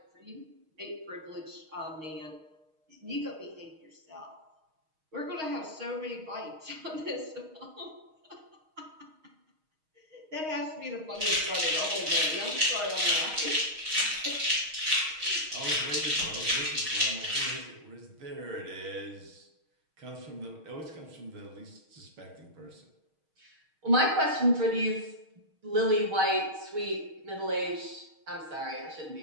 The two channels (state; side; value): late; left; 6.4 ms